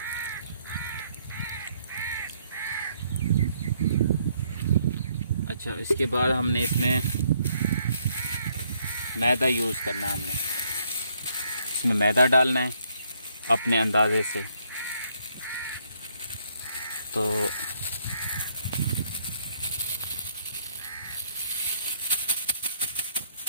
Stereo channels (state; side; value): inverted; both; correlation -0.69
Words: अच्छा, इसके बाद हमने इसमें मैदा यूज़ करना है। हमने इसमें मैदा डालना है अपने अंदाजे से। तो